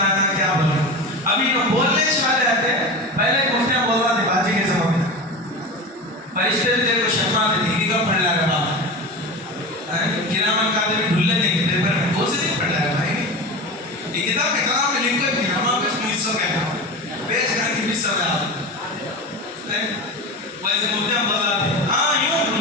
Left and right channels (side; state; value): both; normal; correlation 0.27